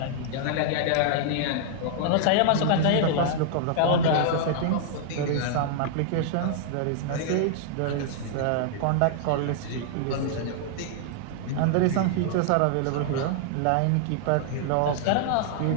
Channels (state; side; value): different; both; correlation -0.01